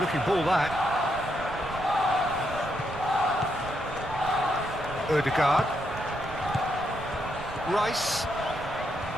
looking ball, that. Odegaard. Rice.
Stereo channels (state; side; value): noise; right; rumble, 14 dB below the sound